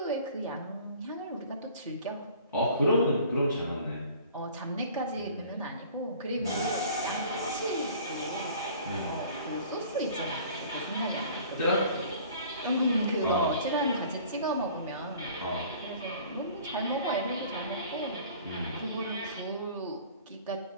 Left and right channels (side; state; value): both; inverted; correlation -0.48